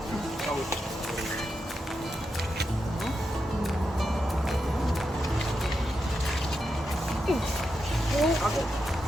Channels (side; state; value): both; normal; correlation 0.86